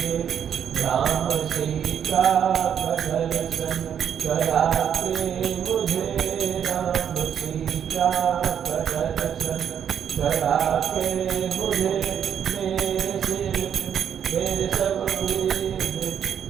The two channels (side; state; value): left; quieter; 8.6 dB